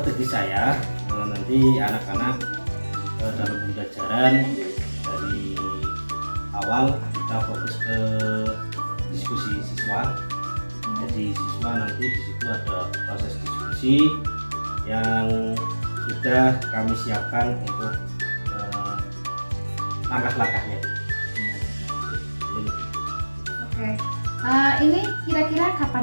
saya nanti anak-anak dalam pembelajaran dari awal kita fokus ke diskusi siswa. Jadi siswa nanti di situ ada proses diskusi yang sudah kami siapkan untuk langkah-langkahnya. Oke. Ini kira-kira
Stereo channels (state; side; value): inverted; both; correlation -1.00